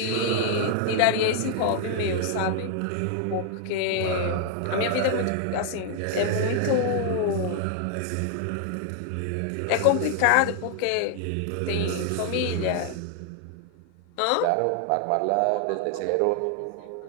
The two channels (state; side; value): different; both; correlation 0.00